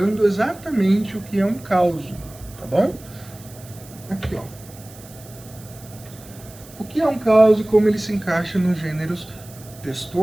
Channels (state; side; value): noise; right; hiss, 21 dB below the sound